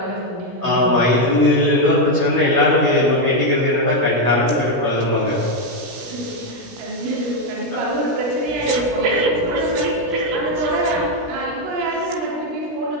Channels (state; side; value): late; left; 17 ms